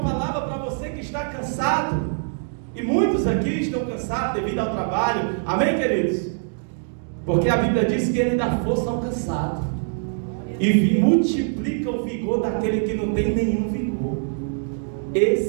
para você que está cansado, e muitos aqui estão cansados devido ao trabalho. Amém, queridos? Porque a Bíblia diz que Ele dá força ao cansado e multiplica o vigor daquele que não tem nenhum vigor.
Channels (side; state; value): left; silent; digital silence